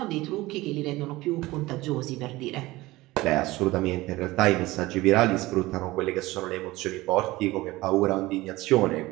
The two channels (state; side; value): quieter; left; 19.3 dB